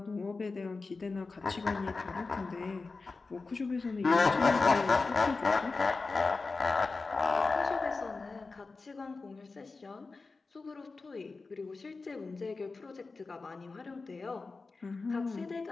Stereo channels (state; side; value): quieter; right; 4.0 dB